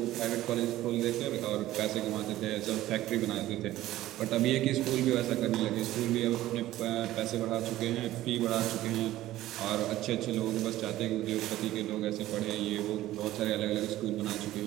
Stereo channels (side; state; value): left; quieter; 15.0 dB